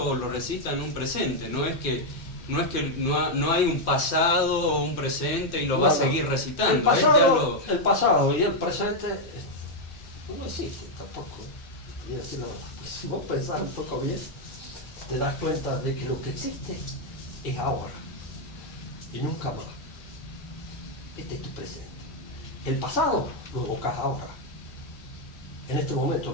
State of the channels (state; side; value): late; right; 2.4 ms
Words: o lo recita en un presente, no hay un pasado o un presente y lo va a seguir recitando. El pasado y el presente no existen tampoco. Y decir, no, pues, si vos pensás un poco bien, te das cuenta de que lo que existe es ahora y nunca más. Este es tu presente. El pasado lo evocás ahora. En este momento